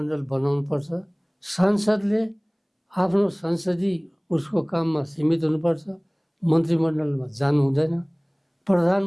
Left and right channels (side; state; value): both; identical; correlation 1.00